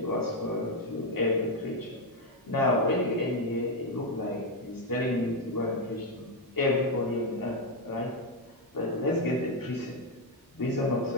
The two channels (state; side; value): normal; both; correlation 0.04